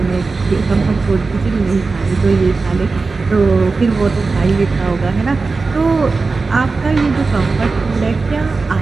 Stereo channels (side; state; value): left; quieter; 4.1 dB